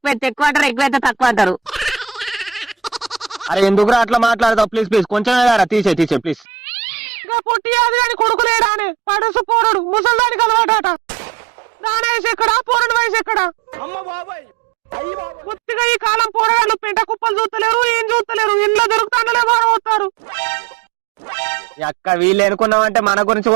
అయితే ఎక్కువ అంటారు, ఎక్కువ అయితే తక్కువ అంటారు. అరే ఎందుకురా అట్లా మాట్లాడతావు? ప్లీజ్ కొంచెం తీసే ప్లీజ్. ఇంకా పొట్టి అది అని కొడుకులేడా అని పడుసు పోరడు ముసల్దానికి అలవాట. దాని వయసు ఎక్కడా, పోరడు వయసు ఎక్కడా? కొద్దిగా ఈ కాలం పోరగాళ్ళు పెంట కుప్పలు చూస్తలేరు, ఏం చూస్తలేరు. ఇంట్లో దొరుకుతాండలే బాగా అక్క వీళ్ళు ఎనుకున్నామంటే మన గురించి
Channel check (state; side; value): drops out; left; at 6.5 s